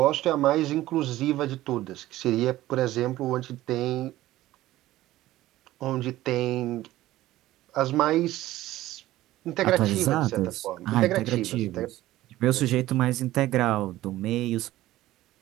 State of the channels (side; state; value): left; quieter; 15.7 dB